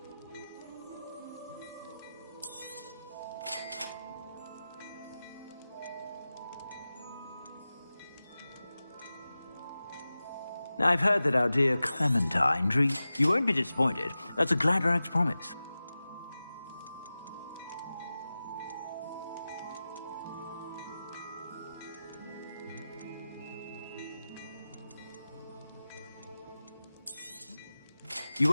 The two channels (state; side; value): inverted; both; correlation -0.95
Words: Now, I've heard that our dear Clementine You won't be disappointed. That's a Gladrag's promise. You